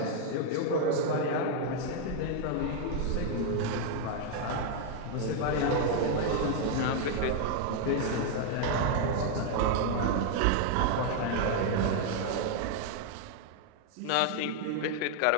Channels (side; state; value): both; different; correlation 0.00